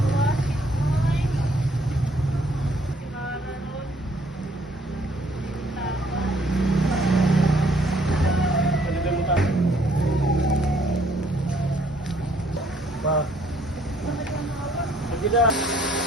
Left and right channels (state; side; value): normal; both; correlation 0.64